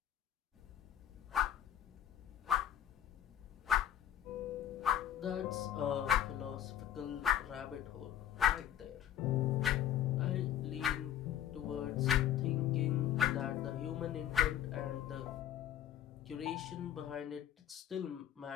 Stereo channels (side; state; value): right; quieter; 10.7 dB